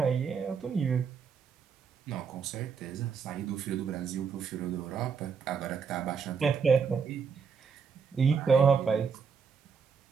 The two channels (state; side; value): quieter; left; 6.1 dB